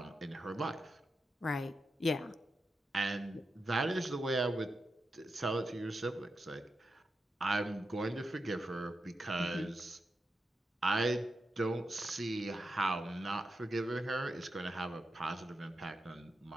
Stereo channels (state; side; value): normal; both; correlation 0.88